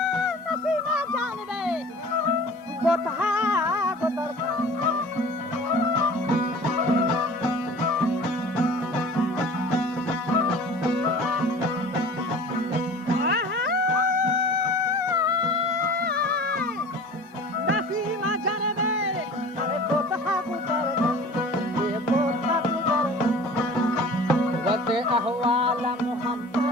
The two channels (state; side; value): normal; both; correlation 0.42